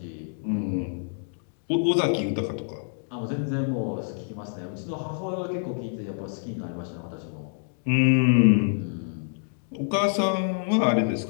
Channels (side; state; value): right; silent; digital silence